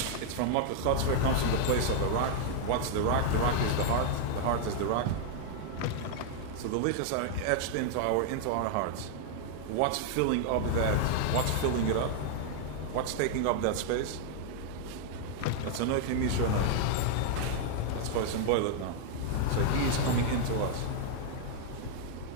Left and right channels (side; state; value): both; different; correlation 0.00